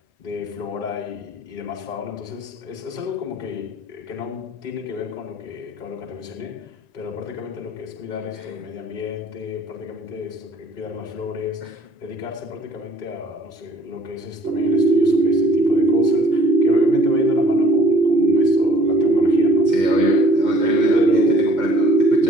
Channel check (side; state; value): both; normal; correlation 0.55